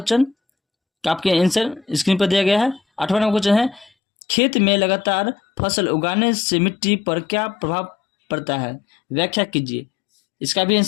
का आपके आंसर स्क्रीन पर दिया गया है। 8वां नंबर क्वेश्चन है, खेत में लगातार फसल उगाने से मिट्टी पर क्या प्रभाव पड़ता है? व्याख्या कीजिए। इसका भी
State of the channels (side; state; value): right; drops out; at 3.9 s